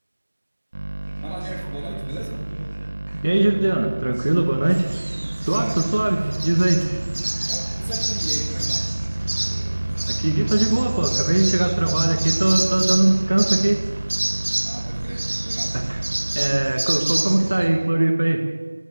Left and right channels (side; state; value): both; inverted; correlation -1.00